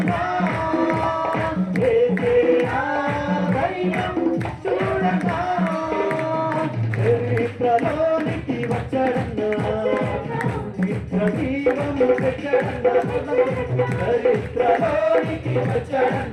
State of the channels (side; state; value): both; identical; correlation 1.00